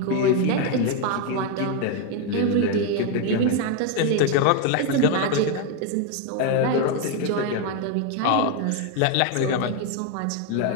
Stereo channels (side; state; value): both; different; correlation 0.01